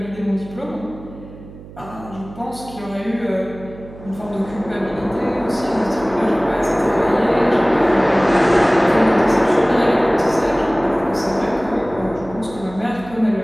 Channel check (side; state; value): right; noise; hum, 17 dB below the sound